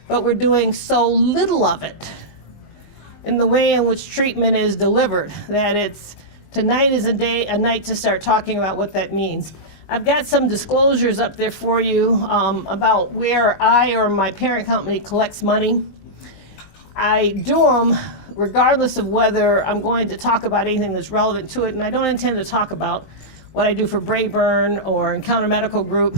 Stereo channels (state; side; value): late; right; 19 ms